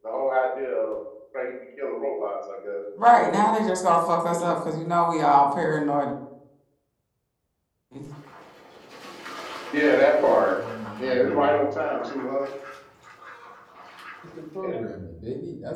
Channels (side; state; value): both; identical; correlation 1.00